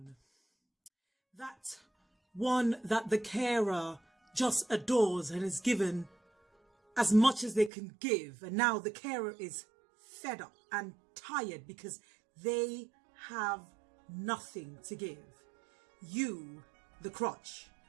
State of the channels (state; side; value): drops out; left; at 7.7 s